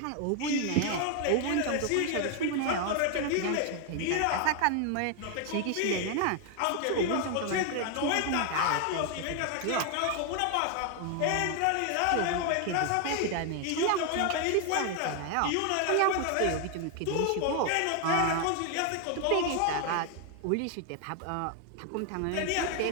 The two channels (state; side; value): different; both; correlation 0.00